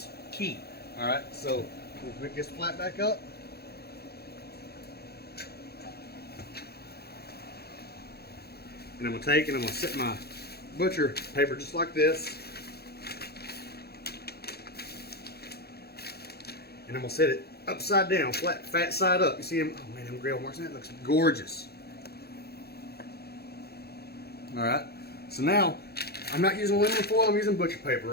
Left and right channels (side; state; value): right; late; 0.46 ms